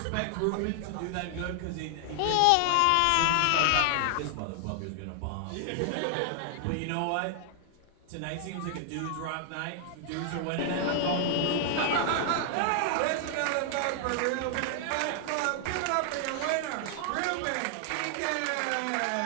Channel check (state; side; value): different; both; correlation 0.00